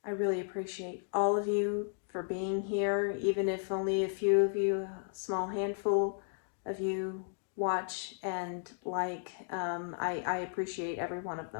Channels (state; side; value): silent; right; digital silence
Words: really appreciate all of you for being here, even if only a few of you, a small handful of you watch and like. I appreciate every one of